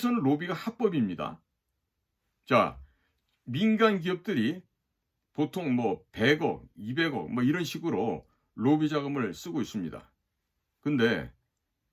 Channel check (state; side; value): identical; both; correlation 1.00